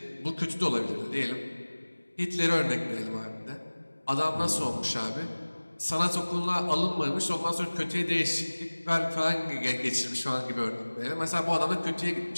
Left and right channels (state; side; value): inverted; both; correlation -1.00